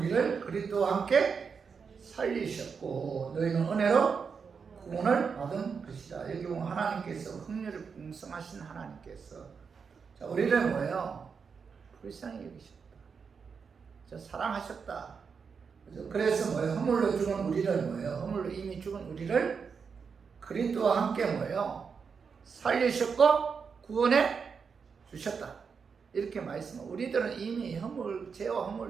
그리스도와 함께 살리셨고 너희는 은혜로 구원을 받은 것이다. 여기 보면 하나님께서 긍휼이 풍성하신 하나님께서 우리를 뭐예요? 불쌍히 여기셨다. 사랑하셨다. 그래서 뭐예요? 허물로 죽은 우리를 뭐예요? 허물로 이미 죽은 우리를 그리스도와 함께 뭐예요? 살리셨고 구원해 주셨다. 이렇게 말씀하고 우리들은 이미 죄와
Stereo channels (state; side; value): quieter; left; 5.8 dB